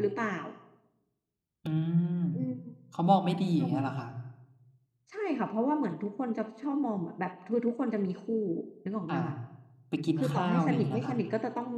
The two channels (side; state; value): both; identical; correlation 1.00